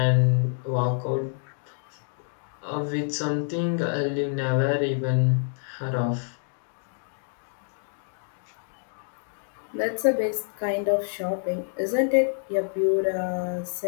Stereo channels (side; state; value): right; silent; 60 dB below the other